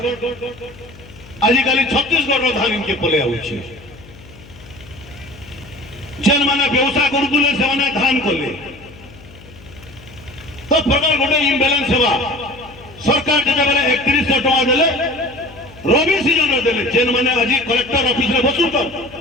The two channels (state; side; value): noise; left; hum, 21 dB below the sound